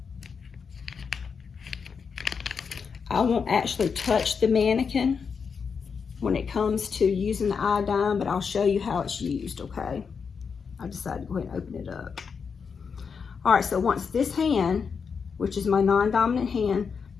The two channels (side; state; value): right; quieter; 5.9 dB